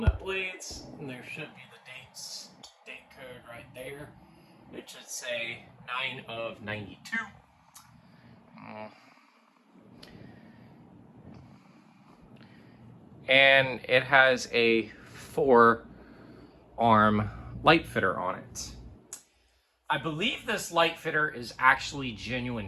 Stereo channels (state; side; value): identical; both; correlation 1.00